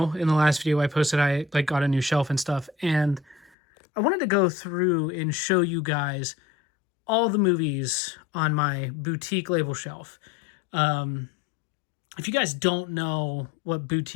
in the last video I posted, I got a new shelf and stuff. And I wanted to go through and show you guys all the movies on my boutique label shelf. If you guys don't know what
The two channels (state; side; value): drops out; right; at 3.5 s